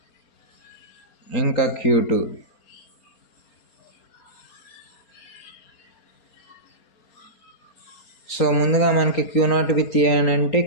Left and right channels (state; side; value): late; right; 4.3 ms